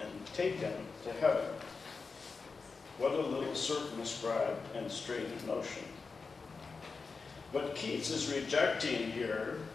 and taken to heaven." What a little circumscribed and straitened notion. What Keats is rejecting here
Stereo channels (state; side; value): quieter; right; 4.6 dB